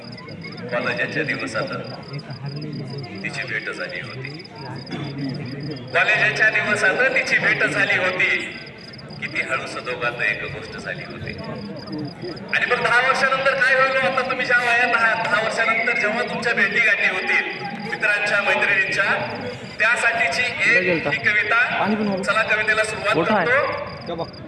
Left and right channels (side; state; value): both; identical; correlation 1.00